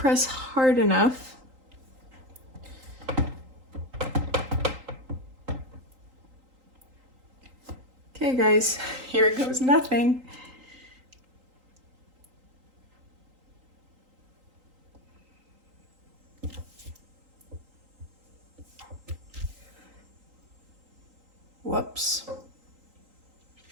hard enough, okay guys, here goes nothing. Whoops.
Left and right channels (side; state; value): left; late; 3.8 ms